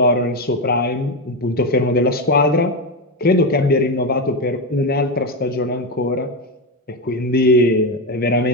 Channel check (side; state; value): both; normal; correlation 0.11